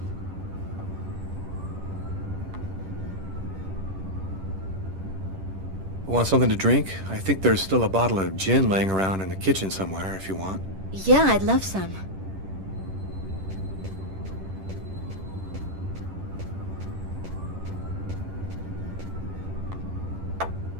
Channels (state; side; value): late; left; 10 ms